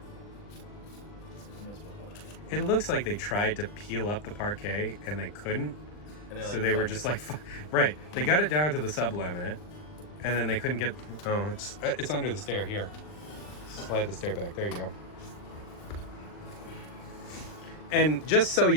It looks like they tried to peel up the parquet and they couldn't. And so they were just like, right. They got it down to the sub-laminate and then they couldn't get, oh, it's under the stair here. Slide the stair back. There you go. And just so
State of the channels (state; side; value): late; right; 39 ms